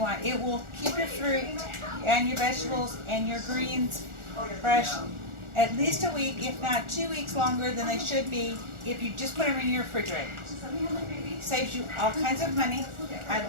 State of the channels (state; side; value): late; left; 1.4 ms